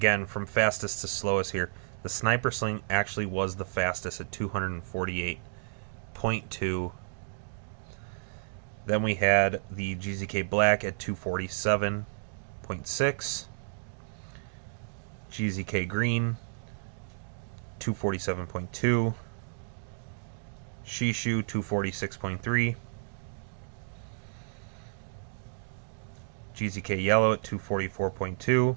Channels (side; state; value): left; silent; digital silence